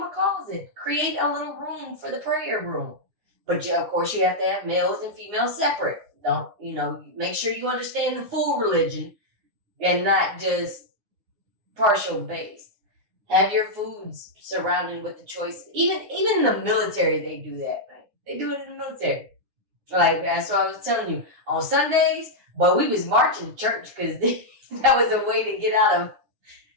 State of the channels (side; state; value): left; late; 9.7 ms